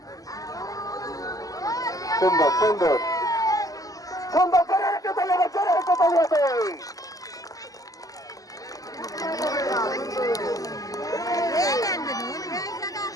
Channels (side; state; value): right; late; 0.17 ms